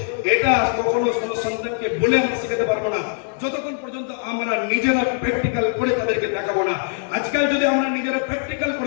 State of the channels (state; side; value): silent; right; 64 dB below the other